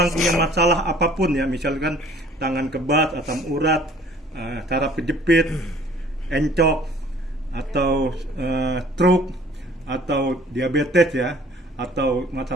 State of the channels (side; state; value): both; normal; correlation 0.53